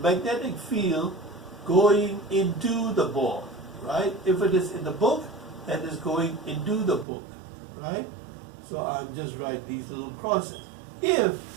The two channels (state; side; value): drops out; left; at 7.1 s